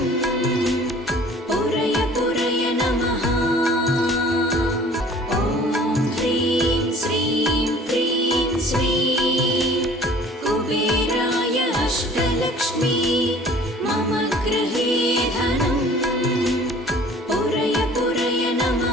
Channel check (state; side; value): normal; both; correlation 0.50